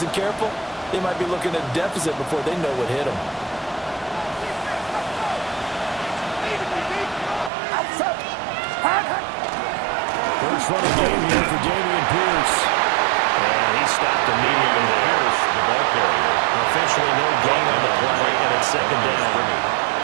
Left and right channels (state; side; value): drops out; left; at 7.5 s